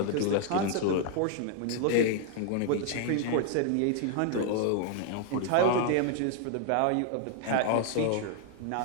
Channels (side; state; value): both; different; correlation 0.00